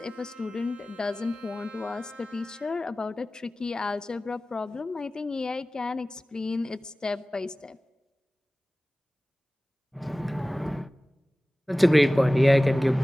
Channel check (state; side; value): normal; both; correlation 0.97